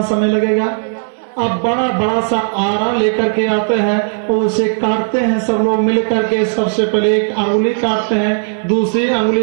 समय लगेगा? अब बड़ा बड़ा सा आरा लेकर के आते हैं और उसे काटते हैं सब लोग मिल करके। सबसे पहले एक अंगुली काटते हैं, दूसरी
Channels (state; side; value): silent; left; 60 dB below the other